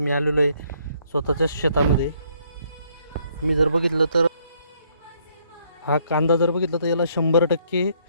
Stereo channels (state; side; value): inverted; both; correlation -0.68